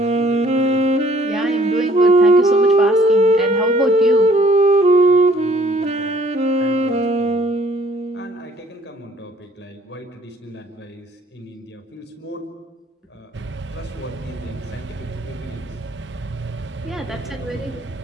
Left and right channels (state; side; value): normal; both; correlation 0.59